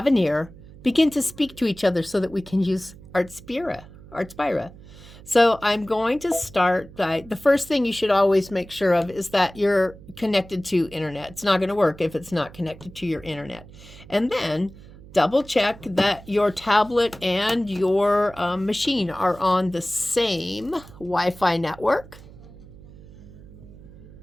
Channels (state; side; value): noise; right; hum, 19 dB below the sound